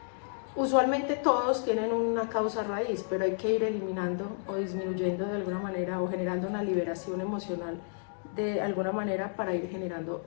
Usualmente todos tienen una causa raíz, pero hay que ir eliminando o disminuyendo de alguna manera o generando una liberación emocional de alguna manera para ir generando,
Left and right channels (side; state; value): right; silent; digital silence